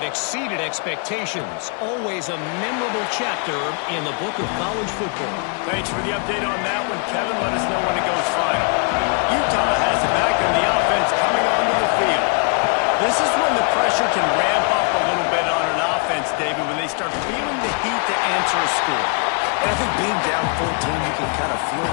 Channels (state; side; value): quieter; right; 38.9 dB